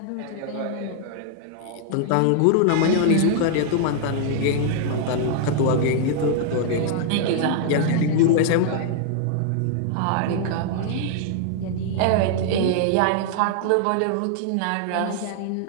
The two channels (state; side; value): different; both; correlation -0.01